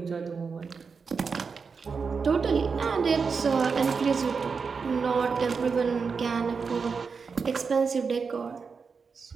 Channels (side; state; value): left; quieter; 5.3 dB